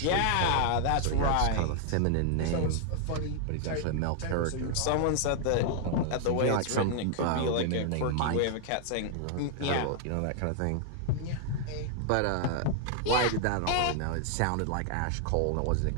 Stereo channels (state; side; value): different; both; correlation 0.00